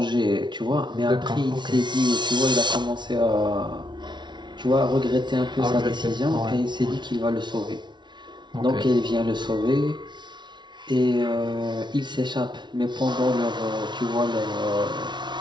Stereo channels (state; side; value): late; left; 0.22 ms